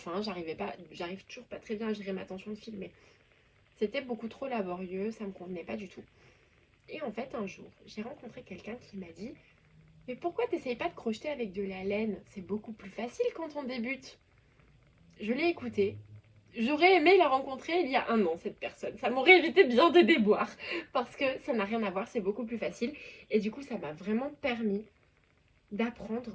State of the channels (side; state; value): both; identical; correlation 1.00